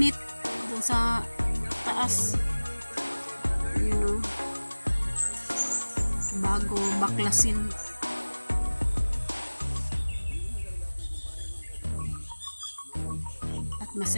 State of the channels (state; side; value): inverted; both; correlation -1.00